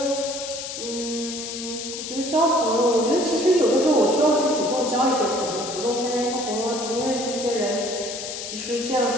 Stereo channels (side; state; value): left; noise; hiss, 7 dB below the sound